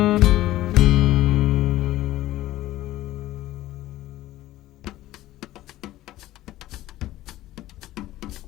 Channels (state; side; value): quieter; right; 15.4 dB